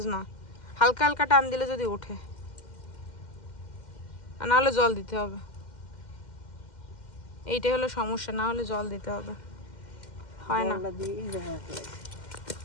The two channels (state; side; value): late; right; 2.1 ms